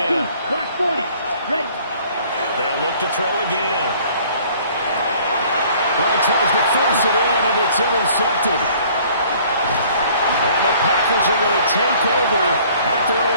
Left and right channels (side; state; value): both; inverted; correlation -0.55